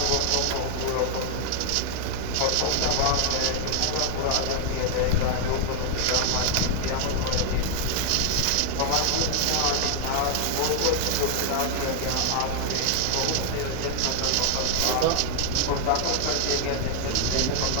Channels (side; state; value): both; different; correlation 0.00